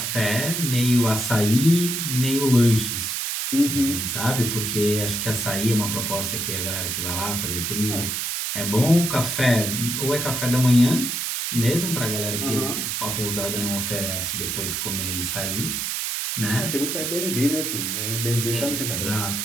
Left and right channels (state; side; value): noise; right; hiss, 2 dB below the sound